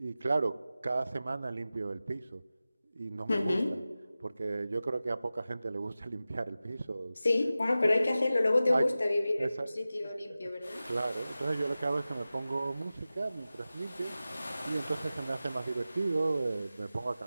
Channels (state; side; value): inverted; both; correlation -0.95